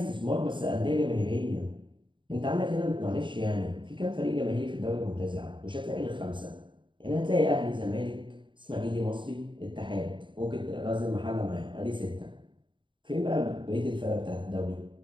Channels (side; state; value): left; late; 0.23 ms